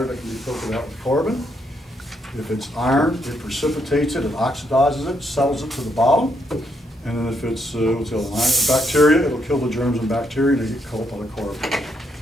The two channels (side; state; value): both; normal; correlation 0.76